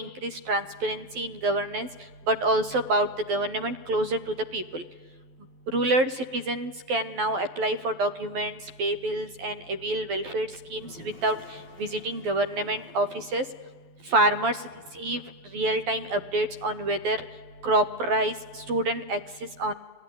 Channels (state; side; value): late; left; 12 ms